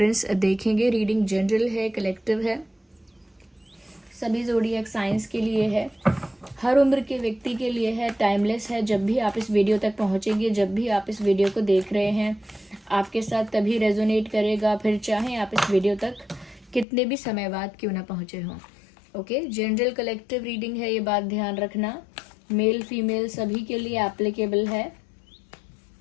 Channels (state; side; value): drops out; right; at 16.9 s